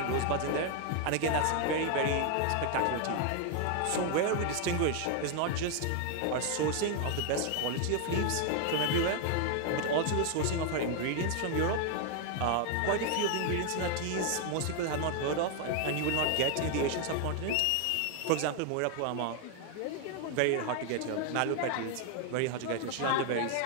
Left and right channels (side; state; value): both; different; correlation 0.00